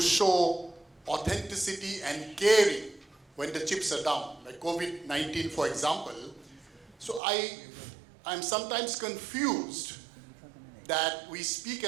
show authenticity and caring when the chips are down, like COVID-19, for example. So I'm sometimes confused that we speak a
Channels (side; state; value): left; drops out; at 7.2 s